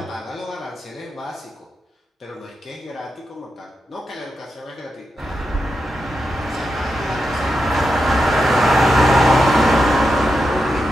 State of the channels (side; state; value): both; normal; correlation 0.87